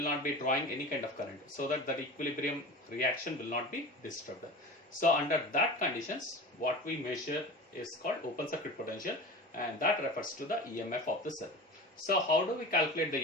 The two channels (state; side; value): normal; both; correlation 0.33